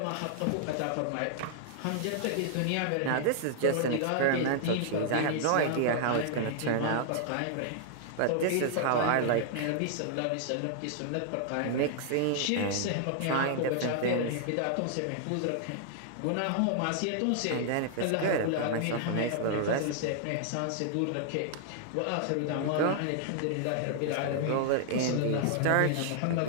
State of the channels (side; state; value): both; different; correlation -0.01